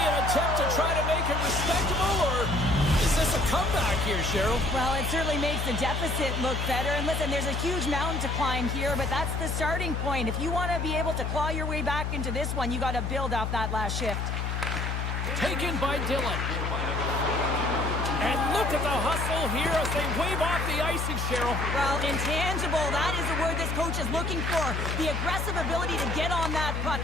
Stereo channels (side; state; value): left; noise; hum, 1 dB below the sound